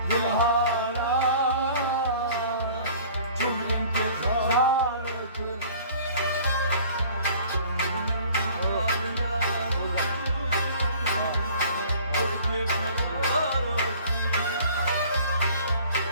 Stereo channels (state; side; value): inverted; both; correlation -0.49